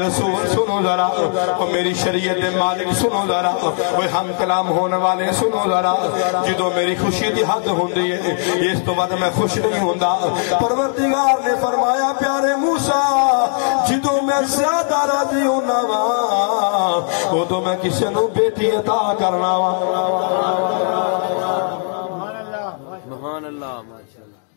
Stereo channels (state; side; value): silent; right; digital silence